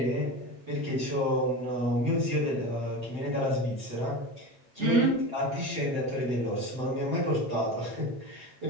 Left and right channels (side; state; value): left; late; 7.7 ms